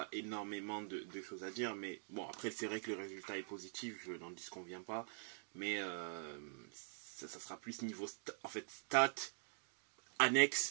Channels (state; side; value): silent; left; digital silence